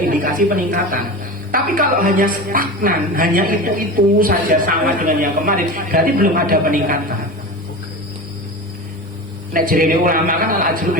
indikasi peningkatan. Tapi kalau hanya stagnan, hanya itu saja sama dengan yang kemarin, berarti belum ada peningkatan. Nek jerene ulama kan al ajru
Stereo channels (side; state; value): both; normal; correlation 0.28